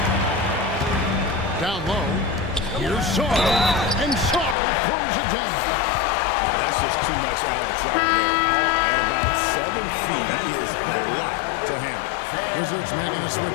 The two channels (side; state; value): right; drops out; at 4.5 s